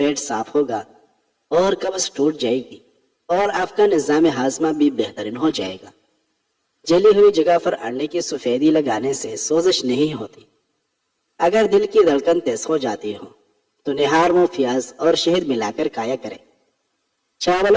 صاف ہوگا اور قبض ٹوٹ جائے گی اور آپ کا نظام ہاضمہ بھی بہترین ہو جائے گا۔ جلی ہوئی جگہ پر انڈے کی سفیدی لگانے سے سوزش نہیں ہوتی۔ اگر دل کی دھڑکن تیز ہو جاتی ہو تو نہار منہ پیاز اور شہد ملا کر کھایا کرے۔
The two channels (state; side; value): identical; both; correlation 1.00